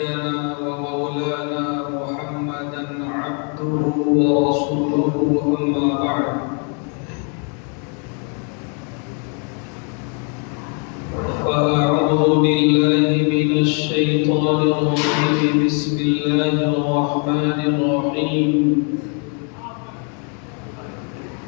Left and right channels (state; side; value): quieter; right; 39.2 dB